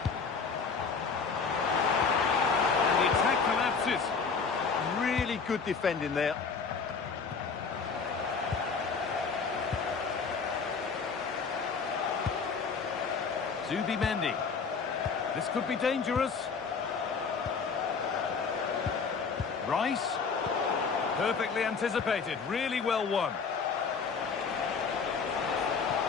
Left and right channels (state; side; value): quieter; right; 5.3 dB